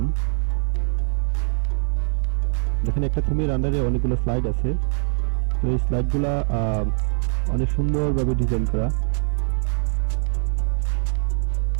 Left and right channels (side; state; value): left; silent; digital silence